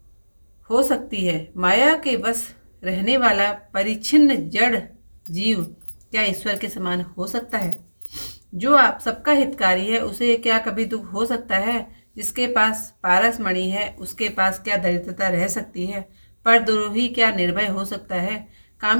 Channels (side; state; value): both; inverted; correlation -1.00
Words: हो सकती है। माया के वश रहने वाला परिच्छिन्न जड़ जीव क्या ईश्वर के समान हो सकता है? जो आप सबका हितकारी है उसे क्या कभी दुख हो सकता है? जिसके पास पारस मणि है उसके पास क्या दरिद्रता रह सकती है? परद्रोही क्या निर्भय हो सकता है?